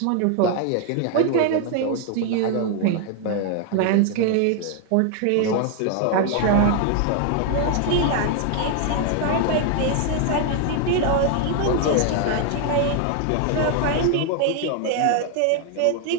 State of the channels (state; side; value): different; both; correlation 0.00